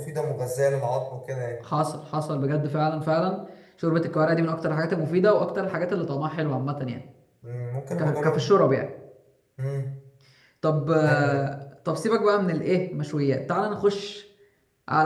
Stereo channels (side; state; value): both; identical; correlation 1.00